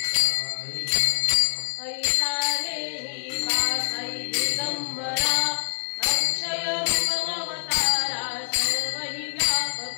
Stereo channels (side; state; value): right; silent; 61 dB below the other